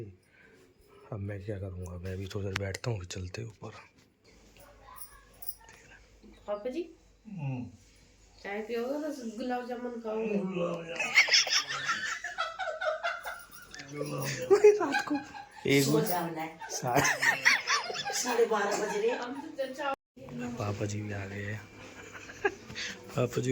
अब मैं क्या करूँगा, मैं भी थोड़ी देर बैठता हूँ, फिर चलते ऊपर। पापा जी चाय पियोगे तो गुलाब जामुन खाओगे? रात को एक सो जाना है। 12:30 बज रहे हैं। पापा जी भी आ गए हैं। पापा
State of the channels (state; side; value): identical; both; correlation 1.00